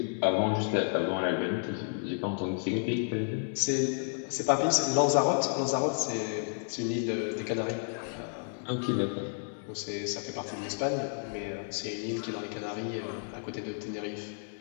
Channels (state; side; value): silent; right; 57 dB below the other